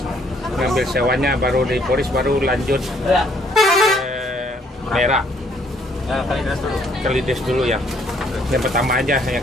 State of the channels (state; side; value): normal; both; correlation 0.65